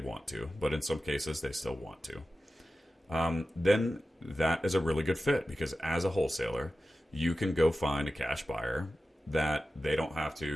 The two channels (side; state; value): both; normal; correlation 0.94